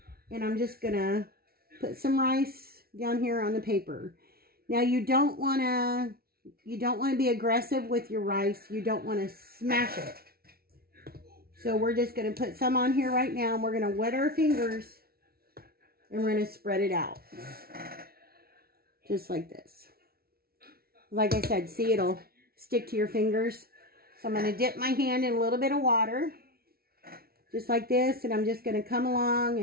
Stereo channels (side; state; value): left; late; 0.44 ms